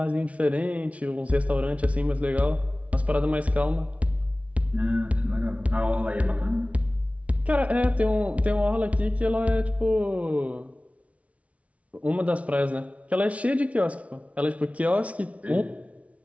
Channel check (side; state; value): left; late; 0.065 ms